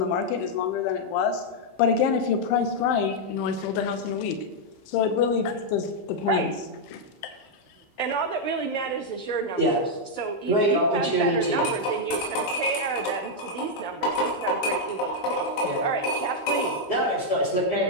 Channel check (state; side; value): late; right; 15 ms